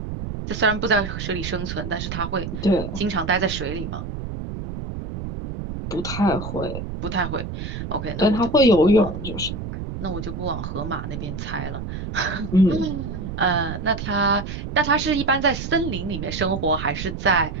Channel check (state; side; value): noise; right; rumble, 6 dB below the sound